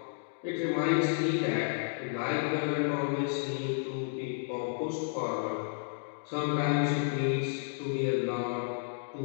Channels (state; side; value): silent; right; digital silence